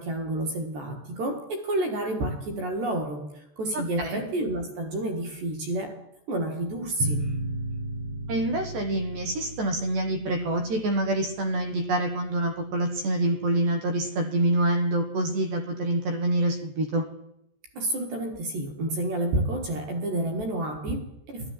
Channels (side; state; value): left; late; 14 ms